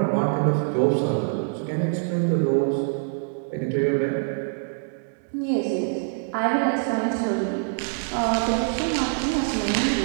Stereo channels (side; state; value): left; silent; digital silence